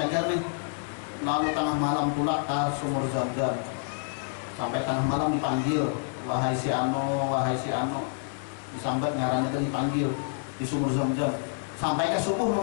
nih. Lalu tengah malam tulak ke sumur Zam-Zam. Sampai tengah malam dipanggil, wahai si Ano, disambat ngarannya tadi dipanggil di sumur Zam-Zam. Sampai ke subuh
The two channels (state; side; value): silent; right; digital silence